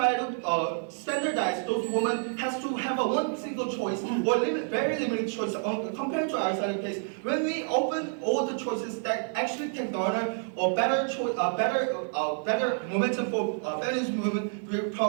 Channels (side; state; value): left; silent; 59 dB below the other